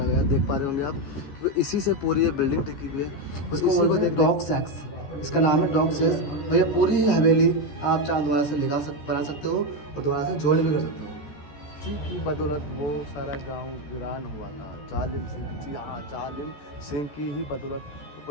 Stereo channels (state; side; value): late; right; 14 ms